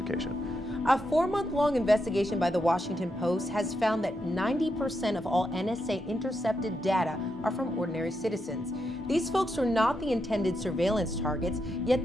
A 4-month-long investigation by the Washington Post has found that 90% of all NSA intercepted data are from ordinary citizens. These folks are not the intended surveillance targets, yet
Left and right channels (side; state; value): both; normal; correlation 0.83